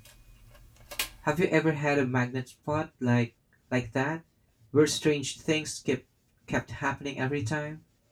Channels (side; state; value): both; identical; correlation 1.00